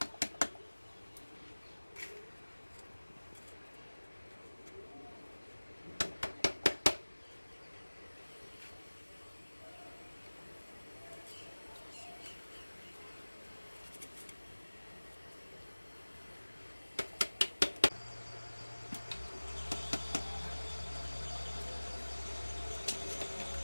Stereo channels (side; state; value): both; inverted; correlation -1.00